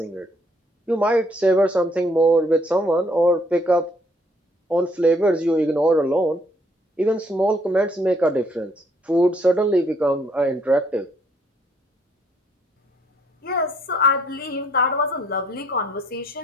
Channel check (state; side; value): normal; both; correlation 0.66